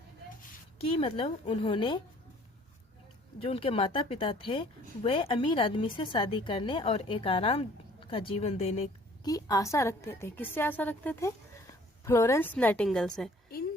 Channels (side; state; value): both; normal; correlation 0.55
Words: कि उन्होंने जो उनके माता पिता थे वे अमीर आदमी से शादी करने और एक आराम का जीवन देने की आशा रखते थे। किससे आशा रखते थे? फ्लोरेंस नाइटिंगेल से। इन